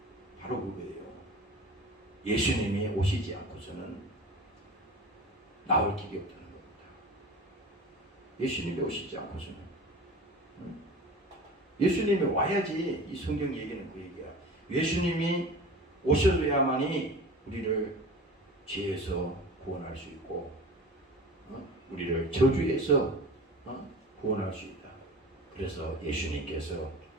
바로 그거예요. 예수님이 오시지 않고서는 나올 길이 없다는 겁니다. 예수님이 오시지 않고서는 예수님이 와야지. 이 성경 얘기는 그 얘기야. 예수님이 오셔야만이 우리를 죄에서 구원할 수 있고 우리를 저주에서 구원할 수 있다. 그래서 예수님께서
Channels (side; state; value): both; normal; correlation 0.37